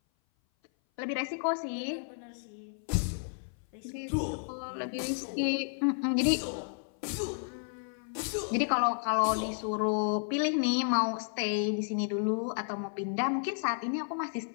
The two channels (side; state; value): right; silent; 56 dB below the other